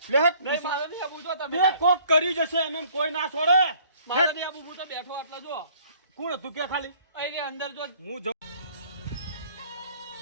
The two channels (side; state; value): both; inverted; correlation -0.58